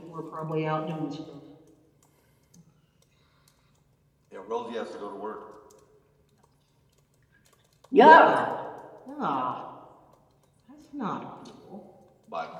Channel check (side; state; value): both; identical; correlation 1.00